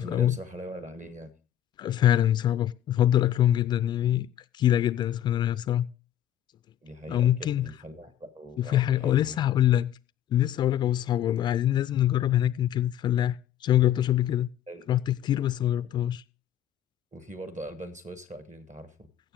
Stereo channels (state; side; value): quieter; right; 11.2 dB